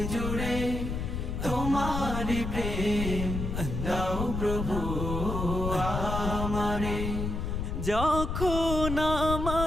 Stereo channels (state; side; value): noise; left; rumble, 3 dB below the sound